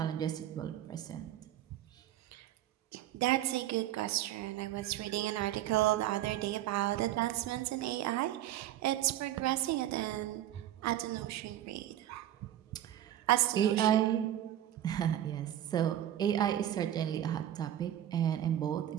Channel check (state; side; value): quieter; left; 12.1 dB